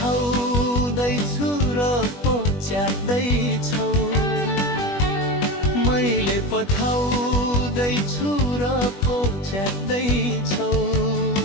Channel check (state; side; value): late; right; 21 ms